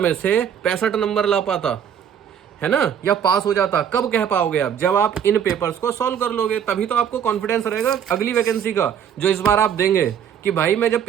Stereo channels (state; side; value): quieter; left; 8.5 dB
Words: से 65 नंबर ला पाता, है ना, या पास हो जाता। कब कह पाओगे आप? जब आप इन पेपर्स को सॉल्व कर लोगे, तभी तो आपको कॉन्फिडेंस रहेगा अगली वैकेंसी का जो इस बार आप देंगे कि भाई मैं जब